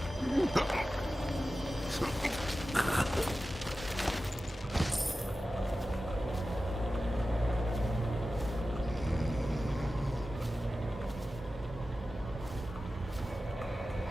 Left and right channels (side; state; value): both; normal; correlation 0.94